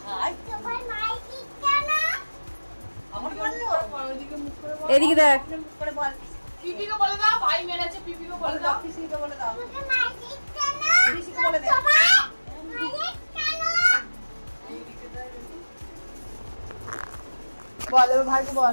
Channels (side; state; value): both; inverted; correlation -1.00